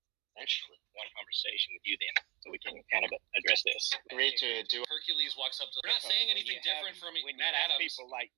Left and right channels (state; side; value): quieter; left; 20.6 dB